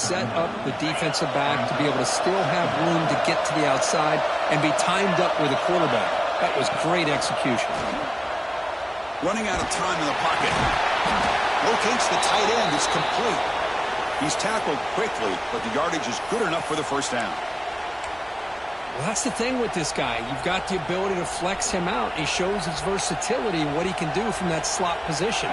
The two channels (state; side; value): identical; both; correlation 1.00